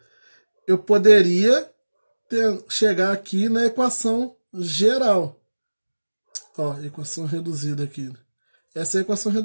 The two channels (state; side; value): inverted; both; correlation -1.00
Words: Eu poderia chegar aqui na equação geral. Ó, equação reduzida aqui. Essa é a equação